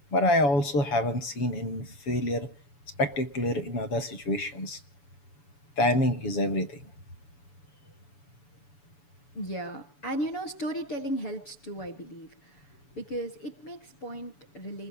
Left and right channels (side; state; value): right; late; 7.0 ms